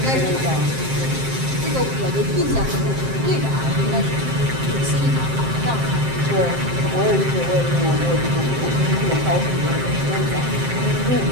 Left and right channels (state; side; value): late; left; 7.6 ms